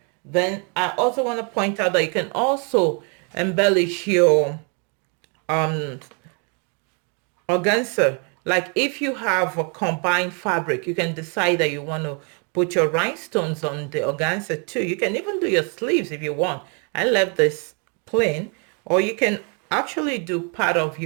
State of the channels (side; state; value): left; quieter; 36.8 dB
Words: Then I also want to point out that you can also embellish your um organza. Like if you have a combined fabric, you can decide that you want to put your rhinestones on the organza too. You can even do your sleeves if you want. I left this plain, or you can actually do part of